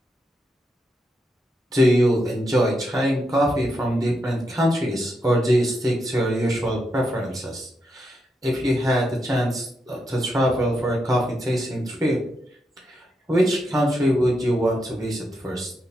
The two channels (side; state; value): both; normal; correlation 0.83